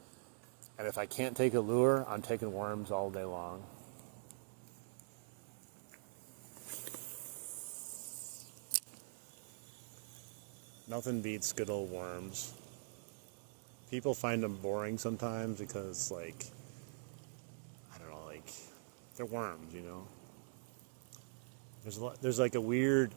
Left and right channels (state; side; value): silent; left; digital silence